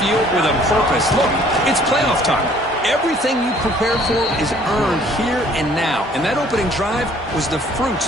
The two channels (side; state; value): both; normal; correlation 0.57